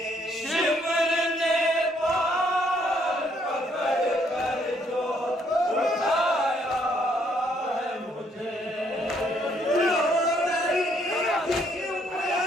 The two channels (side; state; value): both; normal; correlation 0.69